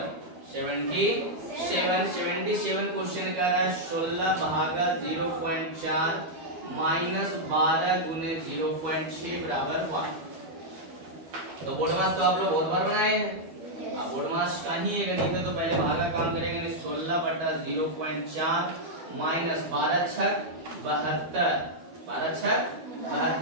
क्वेश्चन कर रहा है 16 भागा 0.4 माइनस 12 गुने 0.6 बराबर 1। तो बोर्ड मास तो आप लोग बहुत बार बनाए हैं। बोर्ड मास का ही ये गणित है तो पहले भागा काम करेंगे 16 बटा 0.4 माइनस 12 छक 72 12 छक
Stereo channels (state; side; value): late; left; 12 ms